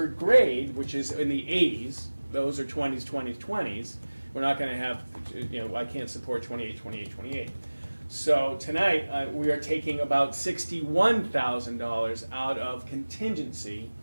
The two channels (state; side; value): inverted; both; correlation -1.00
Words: grade, which is in the 80s. Those are 20s, 20s, 20s. We're not going to have, I can't support 28, 28, 28. So tonight we are taking about $61,000 out of contingency,